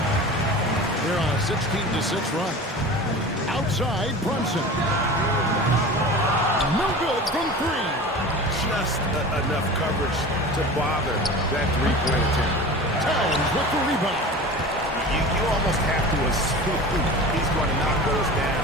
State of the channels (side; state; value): both; normal; correlation 0.35